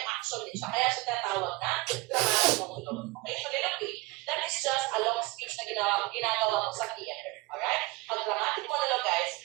action din siya. Kaya siya tinatawag na dramatic monologue. Okay, soliloquy, that is just a long speech na ginagawa mo sa theater. Alright? Ang dramatic monologue guys,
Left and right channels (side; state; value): left; quieter; 22.9 dB